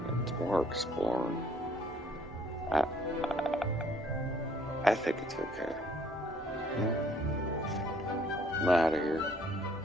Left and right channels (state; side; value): normal; both; correlation 0.62